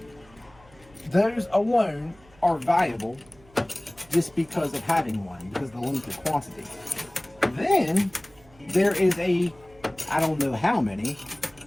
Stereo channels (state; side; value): noise; right; hum, 27 dB below the sound